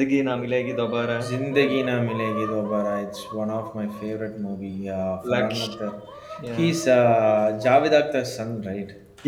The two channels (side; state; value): both; identical; correlation 1.00